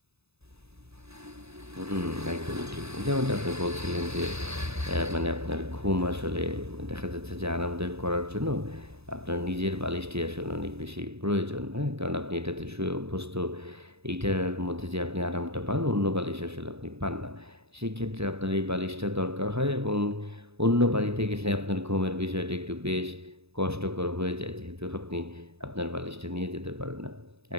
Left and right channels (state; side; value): late; left; 0.79 ms